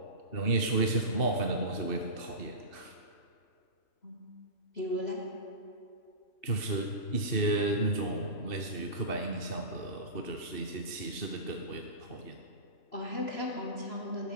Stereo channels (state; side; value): late; right; 2.7 ms